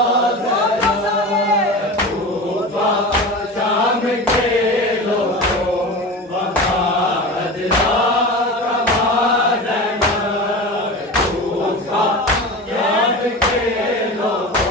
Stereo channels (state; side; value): normal; both; correlation 0.29